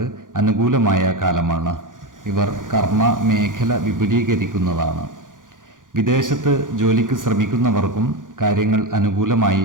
അനുകൂലമായ കാലമാണ്. ഇവർ കർമ്മ മേഖല വിപുലീകരിക്കുന്നതാണ്. വിദേശത്ത് ജോലിക്ക് ശ്രമിക്കുന്നവർക്കും കാര്യങ്ങൾ അനുകൂലമായി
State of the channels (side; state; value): left; late; 0.89 ms